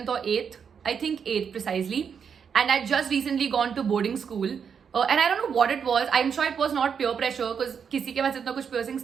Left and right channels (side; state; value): left; quieter; 6.9 dB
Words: or 8th. I think 8th precisely. And I just recently gone to boarding school. And I don't know what it was. I'm sure it was not peer pressure because किसी के पास इतना कुछ piercings